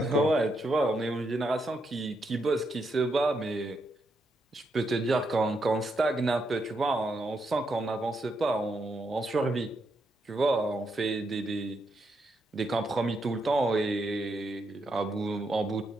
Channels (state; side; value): normal; both; correlation 0.81